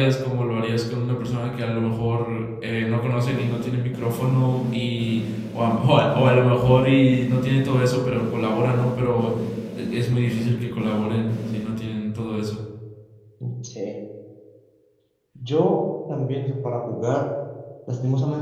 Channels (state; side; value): identical; both; correlation 1.00